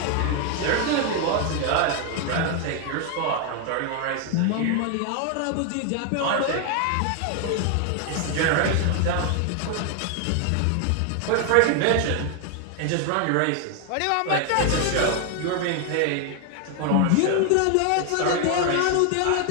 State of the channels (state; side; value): different; both; correlation 0.01